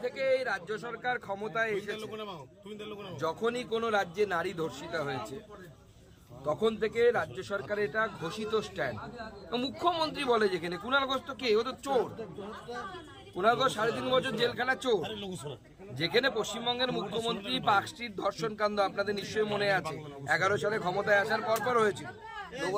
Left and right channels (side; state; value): both; identical; correlation 1.00